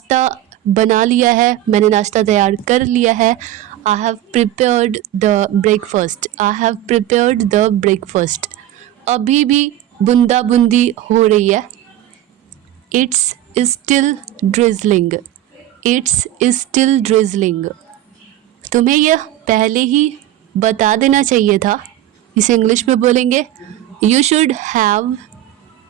बना लिया है। मैंने नाश्ता तैयार कर लिया है। I have prepared the breakfast. I have prepared the breakfast. अभी भी बूंदा बूंदी हो रही है। It's still drizzling. It's still drizzling. तुम्हें यह पहले ही बता देना चाहिए था। इसे इंग्लिश में बोलेंगे you should have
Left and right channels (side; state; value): left; quieter; 13.3 dB